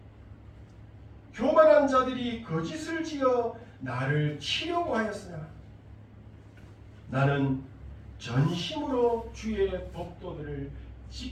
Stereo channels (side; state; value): both; identical; correlation 1.00